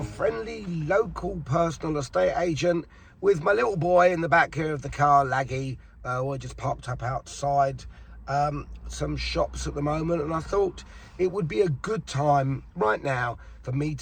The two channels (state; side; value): identical; both; correlation 1.00